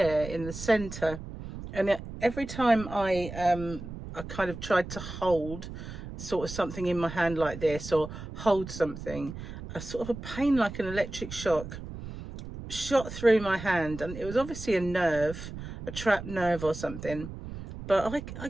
in the center, and every time I kind of tried to hold sort of something in my hand like this, or hold something, a sort of a pain like an electric shock shot through my hand, and it was obviously a nerve, a trapped nerve or something, but I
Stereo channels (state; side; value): noise; right; rumble, 10 dB below the sound